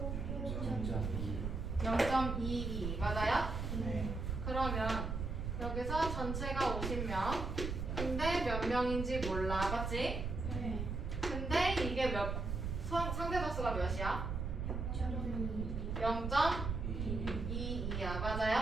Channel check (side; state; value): right; noise; rumble, 3 dB below the sound